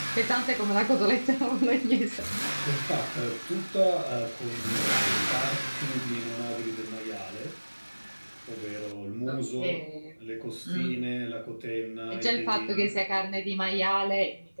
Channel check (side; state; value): both; inverted; correlation -1.00